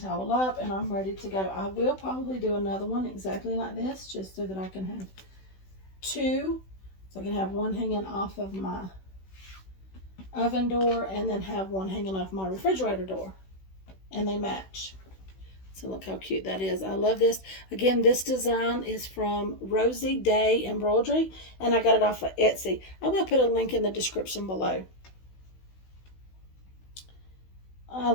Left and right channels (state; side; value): late; right; 16 ms